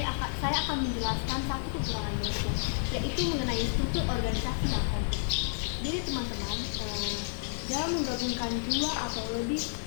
saya akan menjelaskan satu kekurangan merger, yaitu mengenai struktur organisasi yang kompleks. Jadi teman-teman, dalam menggabungkan dua atau lebih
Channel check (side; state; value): right; silent; digital silence